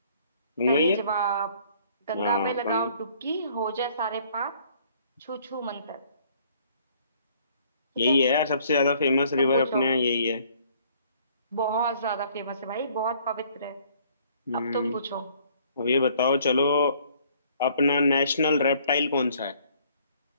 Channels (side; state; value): both; inverted; correlation -0.60